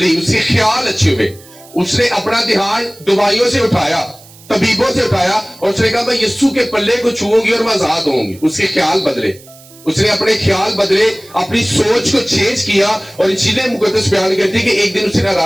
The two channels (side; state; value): right; noise; hiss, 23 dB below the sound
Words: اس کے خیال اچھے ہوئے اس نے اپنا دھیان دوائیوں سے اٹھایا طبیبوں سے اٹھایا اور اس نے کہا میں یسوع کے پلے کو چھوؤں گی اور میں آزاد ہوں گی اس کے خیال بدلے اس نے اپنے خیال بدلے اپنی سوچ کو چینج کیا اور انجیل مقدس بیان کرتی کہ ایک دن اس نے